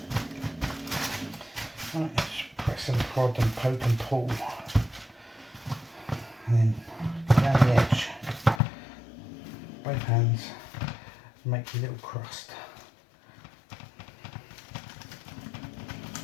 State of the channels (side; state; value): right; drops out; at 8.6 s